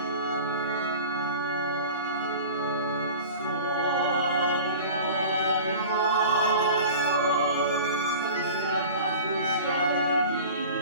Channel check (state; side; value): inverted; both; correlation -0.38